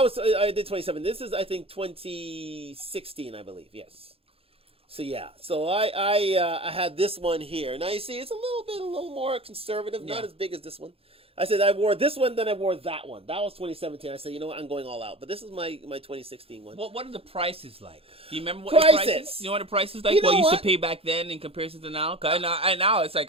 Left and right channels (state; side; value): late; left; 0.28 ms